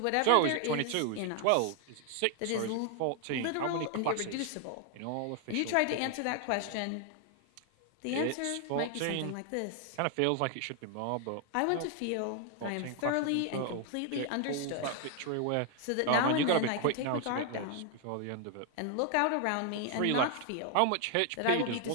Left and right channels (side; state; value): both; different; correlation 0.00